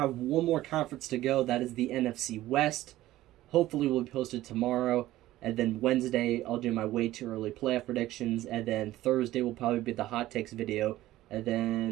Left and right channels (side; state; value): left; quieter; 15.5 dB